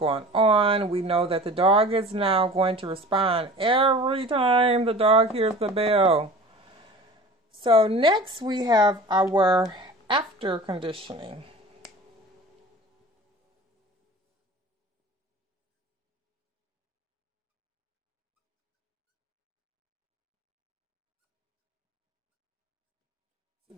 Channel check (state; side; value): normal; both; correlation 0.40